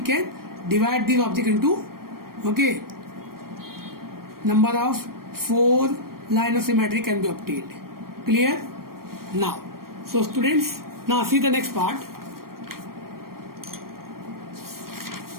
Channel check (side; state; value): left; late; 0.93 ms